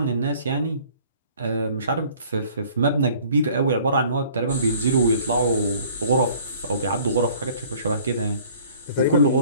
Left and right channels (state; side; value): inverted; both; correlation -0.54